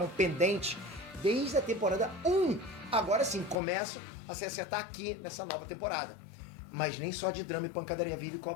pendentes desde a temporada 1. Agora sim, começam a se acertar aqui nessa nova temporada. Mas nem só de drama e pancadaria vive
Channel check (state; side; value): drops out; right; at 3.6 s